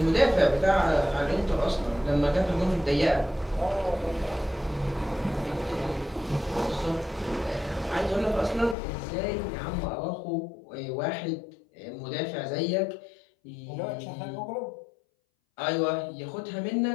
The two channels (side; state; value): right; drops out; at 8.8 s